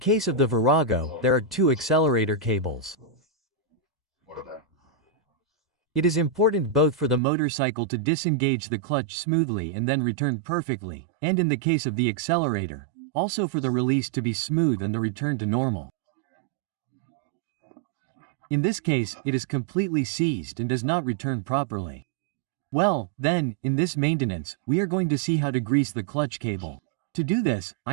of the Virago, there are 2 accelerator cables. It is important both for the motorcycle to disengage the clutch smoothly and then return perfectly, and in the case of the accelerator, also for the release to be smooth and the return to normal. In this case, it is completely seized and does not return properly. Well, then, in this maintenance, we are going to see how to grease the clutch cable. To do this,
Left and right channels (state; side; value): drops out; left; at 7.2 s